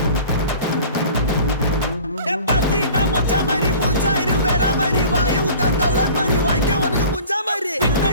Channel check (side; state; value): both; inverted; correlation -0.44